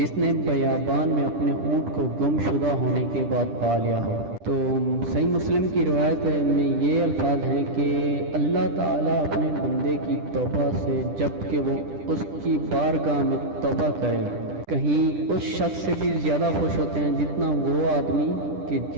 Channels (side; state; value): left; late; 10 ms